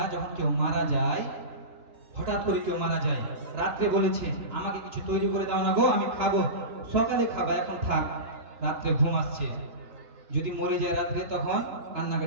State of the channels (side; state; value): left; late; 2.9 ms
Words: যখন কেউ মারা যায়, হঠাৎ করে কেউ মারা যায়, রাত্রে বলেছে আমাকে কিছু তৈরি করে দাও না গো, আমি খাবো, সকালে খাবা, এখন থাক, রাত্রে ঘুম আসছে। যদি মরে যায় রাত্রে, তখন